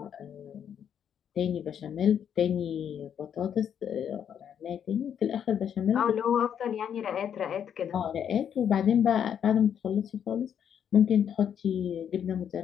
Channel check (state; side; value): quieter; right; 8.6 dB